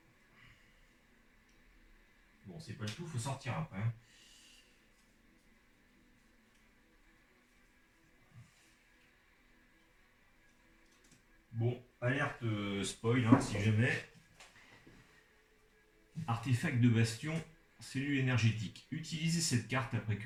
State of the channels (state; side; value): identical; both; correlation 1.00